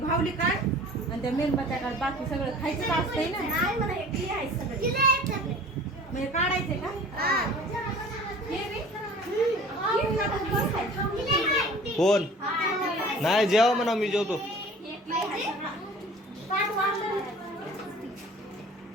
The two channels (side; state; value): both; normal; correlation 0.45